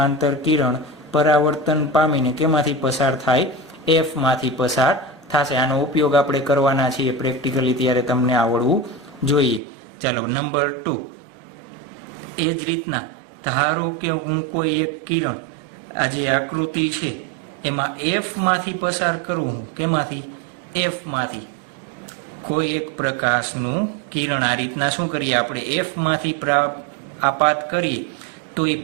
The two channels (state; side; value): drops out; left; at 9.6 s